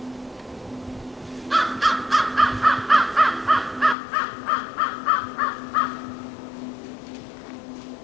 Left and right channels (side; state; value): right; drops out; at 4.0 s